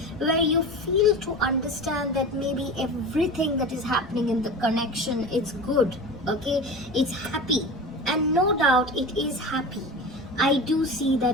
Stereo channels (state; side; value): normal; both; correlation 0.31